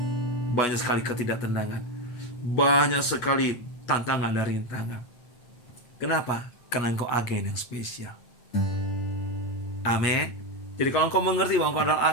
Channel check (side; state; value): right; late; 8.2 ms